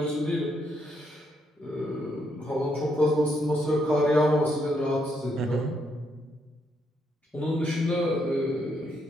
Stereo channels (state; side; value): normal; both; correlation 0.76